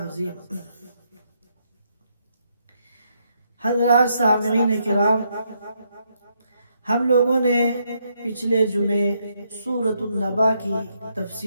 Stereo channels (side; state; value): both; inverted; correlation -0.77